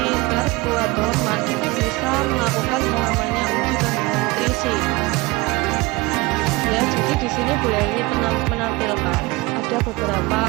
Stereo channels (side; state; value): left; quieter; 22.6 dB